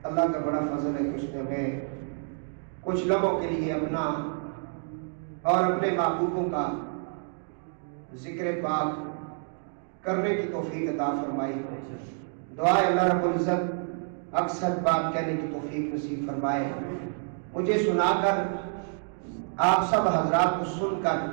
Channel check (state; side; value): silent; left; 59 dB below the other